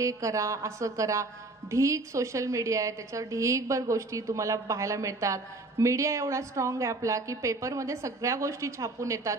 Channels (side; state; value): left; quieter; 3.1 dB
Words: करा, असं करा. ढीक सोशल मीडिया आहे, त्याच्यावर ढीकभर गोष्टी तुम्हाला पाहायला मिळतात. मीडिया एवढा स्ट्रॉंग आहे आपला की पेपरमध्ये सगळ्या गोष्टी छापून येतात,